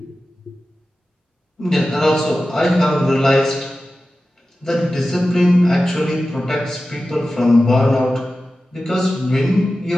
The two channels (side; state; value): both; normal; correlation 0.94